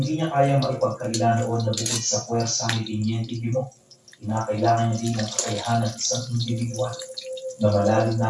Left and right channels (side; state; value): both; identical; correlation 1.00